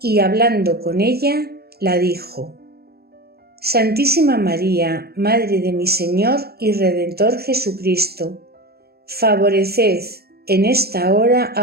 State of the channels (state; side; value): late; left; 0.46 ms